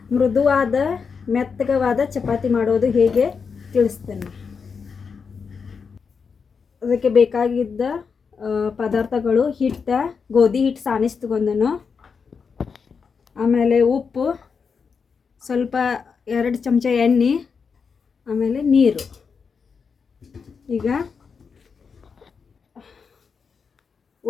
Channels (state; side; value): quieter; right; 5.7 dB